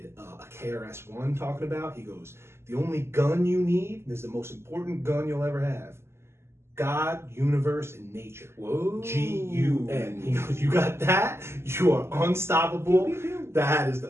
a KRS-One talking about, he goes, the only gun you need, this is the most important gun you'll ever have, God, universe, and nature. Whoa. G-U-N. He goes, you got that? You are unstoppable. That is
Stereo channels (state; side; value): late; left; 0.12 ms